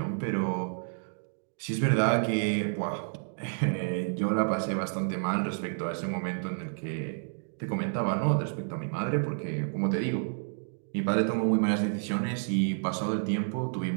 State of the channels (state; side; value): silent; left; digital silence